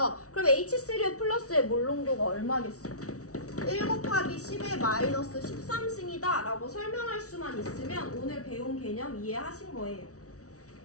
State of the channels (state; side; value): late; right; 0.66 ms